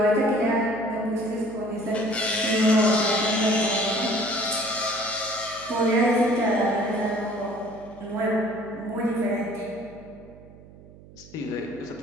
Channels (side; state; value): right; noise; hum, 21 dB below the sound